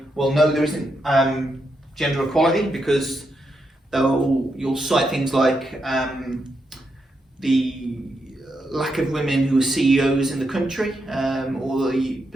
well, no, there isn't gender equality, because you'll cite things like the lack of women who are CEOs in the country, or the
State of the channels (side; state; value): both; normal; correlation 0.83